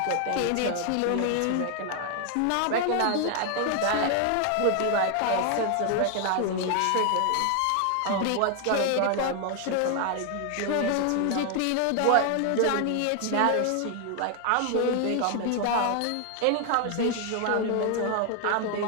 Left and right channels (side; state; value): both; different; correlation 0.00